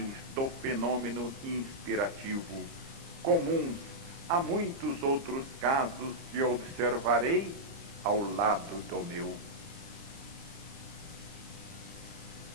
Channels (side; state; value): left; late; 30 ms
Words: do fenômeno inspirativo, comuns a muitos outros casos que observarei ao lado do meu.